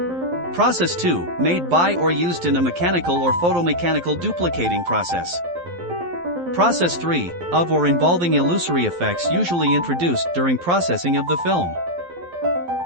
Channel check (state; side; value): late; left; 12 ms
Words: Process 2, made by or used in a mechanical or photomechanical duplicating process. Process 3, of or involving illusory effects usually introduced during processing of the film.